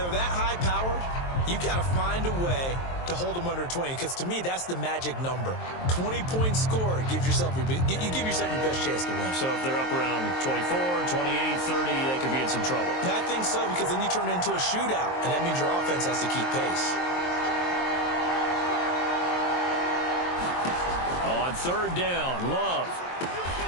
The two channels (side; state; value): right; late; 23 ms